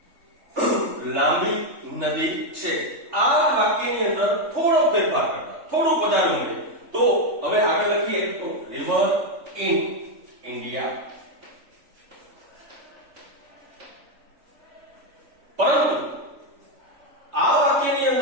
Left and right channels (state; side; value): late; left; 3.4 ms